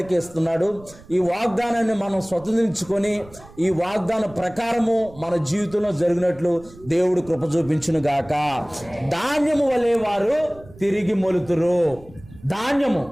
ఇస్తున్నాడు. ఈ వాగ్దానాన్ని మనం స్వతంత్రించుకొని ఈ వాగ్దాన ప్రకారము మన జీవితంలో జరిగినట్లు దేవుడు కృప చూపించును గాక. ధాన్యము వలె వారు తిరిగి మొలుతురు.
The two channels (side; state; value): right; noise; rumble, 21 dB below the sound